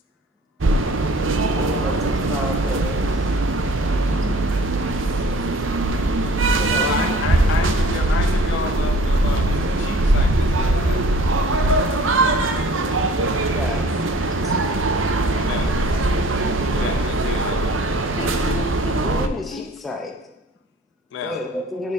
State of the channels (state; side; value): normal; both; correlation 0.49